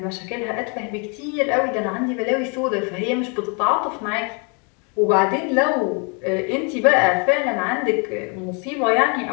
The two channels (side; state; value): right; quieter; 35.4 dB